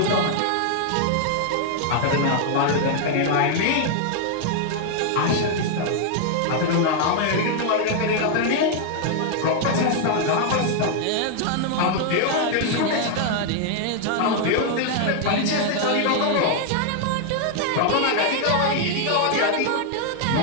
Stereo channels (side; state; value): both; different; correlation 0.00